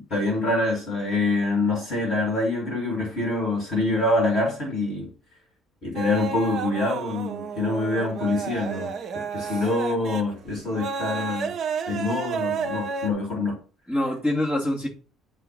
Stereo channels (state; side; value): normal; both; correlation 0.58